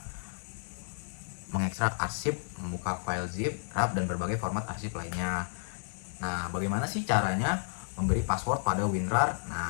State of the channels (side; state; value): right; silent; digital silence